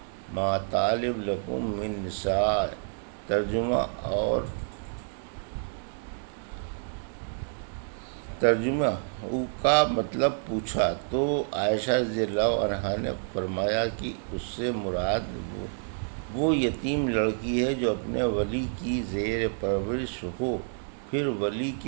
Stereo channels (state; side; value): silent; left; digital silence